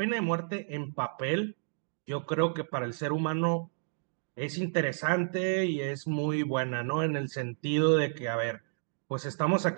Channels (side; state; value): left; silent; digital silence